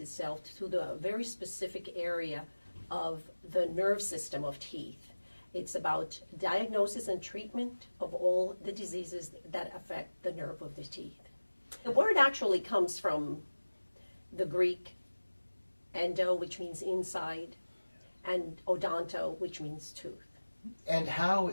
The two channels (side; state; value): both; inverted; correlation -1.00